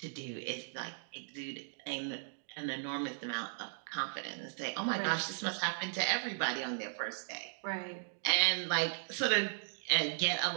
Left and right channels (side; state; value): left; silent; digital silence